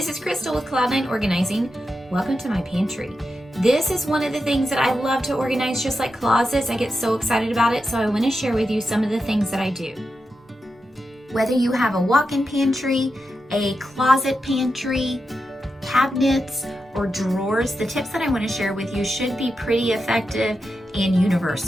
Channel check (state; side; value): normal; both; correlation 0.89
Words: is Crystal with Cloud9 Organizing. Welcome to my pantry. This is one of the things that I love to organize, just like closets. I get so excited about it, so I want to share with you some of the things that I do. Whether you have a walk-in pantry, a closet pantry, cabinets, or drawers, the tips that I want to share with you should be pretty effective and